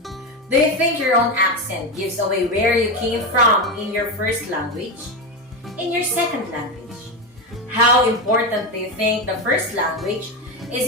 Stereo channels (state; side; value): normal; both; correlation 0.14